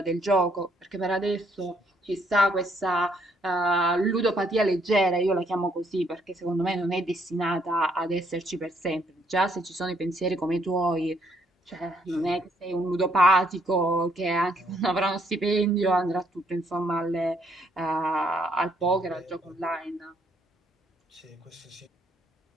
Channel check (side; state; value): both; normal; correlation 0.69